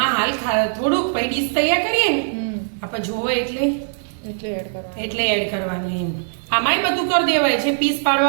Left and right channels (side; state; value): left; silent; 65 dB below the other